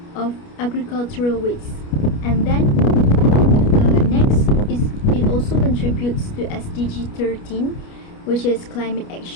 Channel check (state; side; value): late; right; 29 ms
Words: of agricultural waste. And then next is it also contributes to SDG 13, which is climate